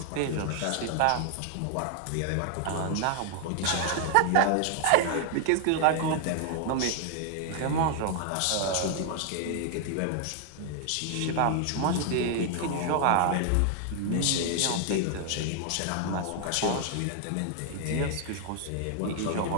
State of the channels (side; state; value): both; different; correlation 0.00